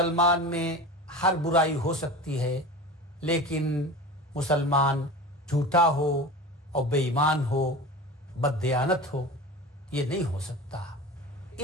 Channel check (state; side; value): normal; both; correlation 0.32